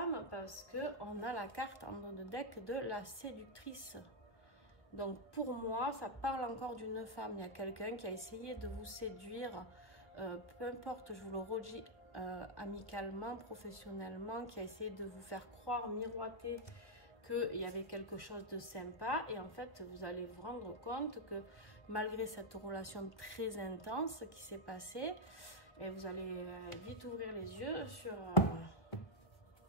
Parce qu'on a la carte en dos de deck de la séductrice. Donc pour moi, ça parle encore d'une femme. Il y a quelqu'un qui a essayé de vous séduire, peu importe, je vous le redis, amicalement, professionnellement, qui a essayé de vous faire croire, miroiter qu'il y avait quelque chose de sympa. Et en fait, vous allez vous rendre compte que malgré cette relation très intense qui s'est passée, et vous allez vite ouvrir les yeux sur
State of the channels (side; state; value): right; late; 1.1 ms